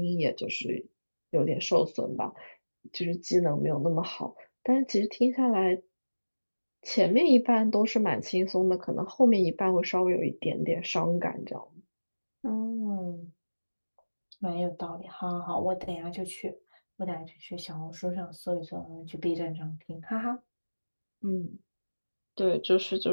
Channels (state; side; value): inverted; both; correlation -1.00